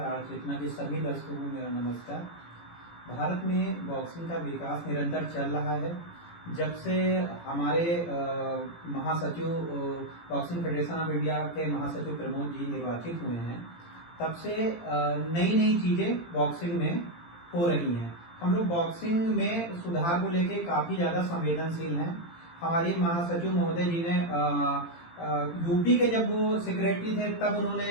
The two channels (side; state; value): right; late; 18 ms